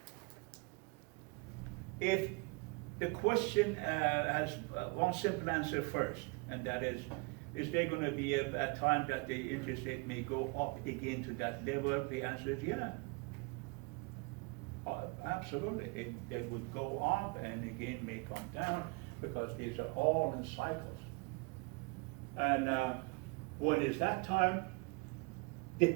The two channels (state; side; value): quieter; left; 29.5 dB